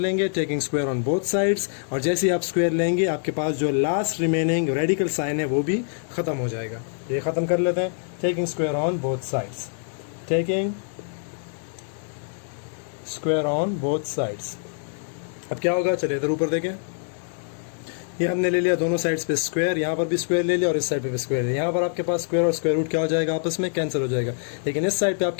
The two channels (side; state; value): right; silent; 62 dB below the other